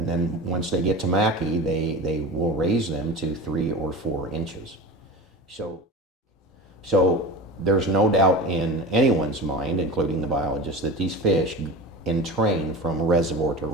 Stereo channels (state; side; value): normal; both; correlation 0.30